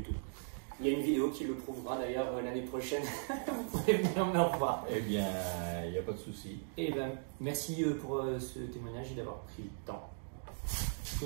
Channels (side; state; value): left; silent; digital silence